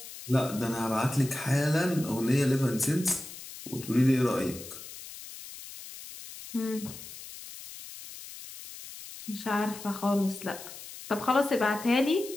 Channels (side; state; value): left; noise; hiss, 14 dB below the sound